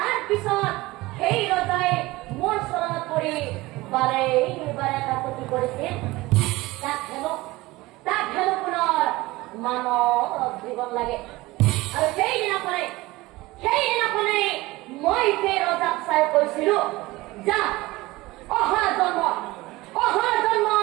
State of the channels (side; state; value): left; quieter; 20.0 dB